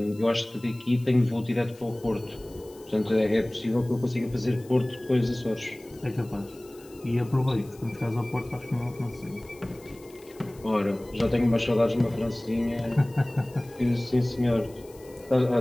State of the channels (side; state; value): left; noise; hiss, 25 dB below the sound